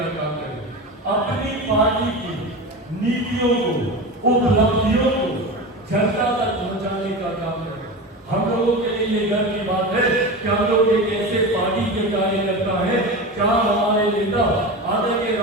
काम करें, अपनी पार्टी की नीतियों को, उपलब्धियों को जनता तक पहुंचाने का काम करें। हम लोगों के लिए ये गर्व की बात है कि हम लोग एक ऐसे पार्टी के कार्यकर्ता है जहां हमारे नेता आदरणीय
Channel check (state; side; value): normal; both; correlation 0.26